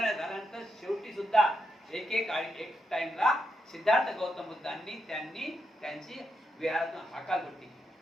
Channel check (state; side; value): normal; both; correlation 0.83